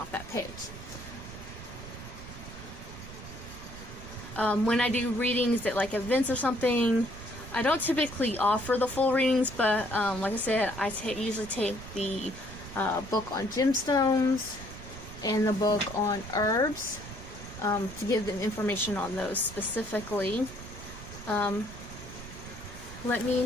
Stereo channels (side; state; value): right; noise; rumble, 13 dB below the sound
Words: that page. When I do readings at like events or something, I don't typically offer the full readings, but like I said, I usually take the book on gemstones and the book on herbs to give them information on those specifically. Let